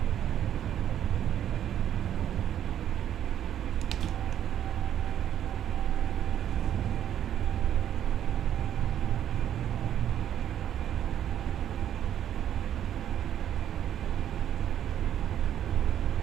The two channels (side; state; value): left; quieter; 10.5 dB